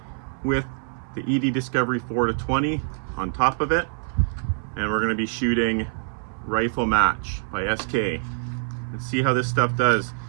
with the ED Discovery 4-20 on top of it, and we're going to be shooting Rifle Match by SK. Let's see how this stuff does.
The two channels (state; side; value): silent; left; 62 dB below the other